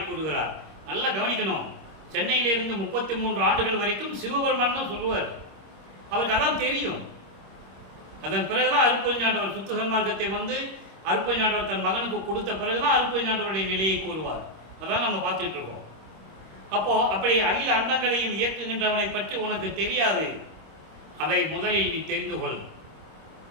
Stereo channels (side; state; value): left; late; 26 ms